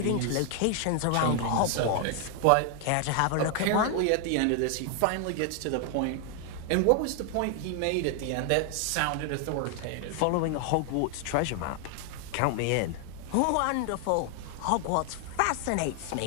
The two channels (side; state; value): both; different; correlation 0.00